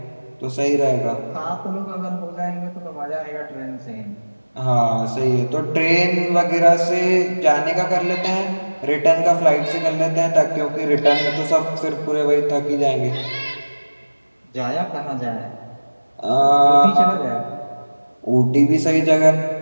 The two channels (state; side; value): inverted; both; correlation -1.00